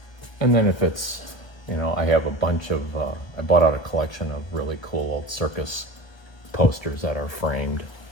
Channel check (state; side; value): late; right; 1.2 ms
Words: And then if it's, you know, I have a bunch of, I bought out a collection of really cool old circus posters that are framed,